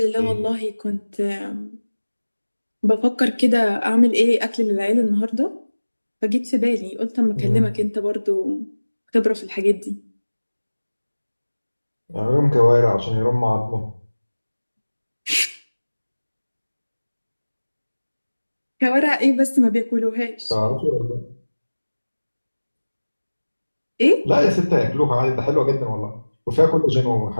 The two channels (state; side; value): inverted; both; correlation -1.00